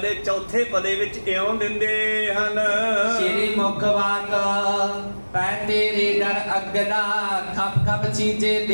ਚੌਥੇ ਪਦੇ ਵਿੱਚ ਇਉਂ ਦਿੰਦੇ ਹਨ। ਸ਼੍ਰੀ ਮੁਖ ਵਾਕ ਪੈ ਤੇਰੇ ਡਰ ਅਗਦਾ ਖਪ ਖਪ ਚੀਜੇ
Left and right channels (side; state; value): both; inverted; correlation -1.00